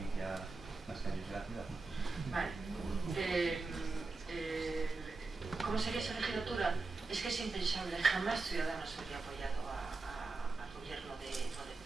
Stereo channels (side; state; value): left; quieter; 3.7 dB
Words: las calles de la ciudad. Vale. ¿Cómo sería esa legislatura? Es que es impensable, jamás Ciudadanos habría apoyado al gobierno de